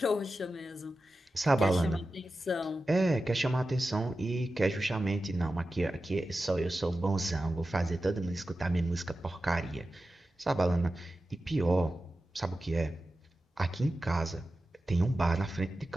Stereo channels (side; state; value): both; normal; correlation 0.93